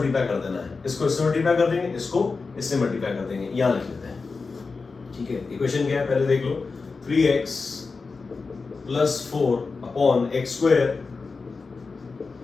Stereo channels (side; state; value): right; quieter; 4.4 dB